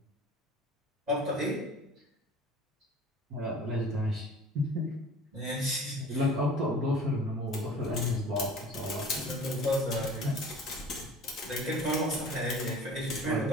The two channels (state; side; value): normal; both; correlation 0.44